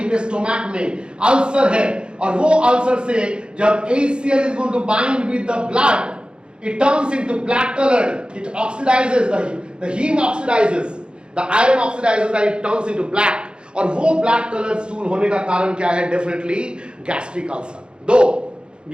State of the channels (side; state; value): left; late; 0.053 ms